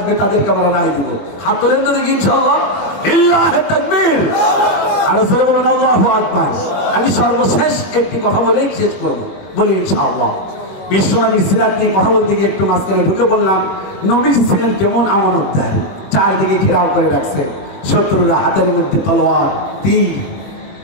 তাদেরকে আমরা রায় দিব। হাত তোলেন তো দেখি ইনশাআল্লাহ। লিল্লাহি তাকবীর। আর জোরে বলেন আল্লাহু আকবার। আমি সর্বশেষ একটি কথা বলেই শেষ করব, বলি ইনশাআল্লাহ। বিশ্বনবী সিরাত নিয়ে কথা বলতে গিয়ে একটু মাঝখানে ঢুকে বললাম, নবীজি ছিলেন কেমন আমানতদার। চারদিকে ঘেরাও করে রাখছে, শত্রুরা হাতের মধ্যে তলোয়ার, তীর।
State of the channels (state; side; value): late; right; 21 ms